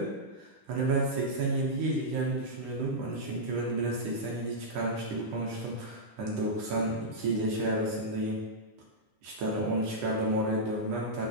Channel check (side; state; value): left; late; 10 ms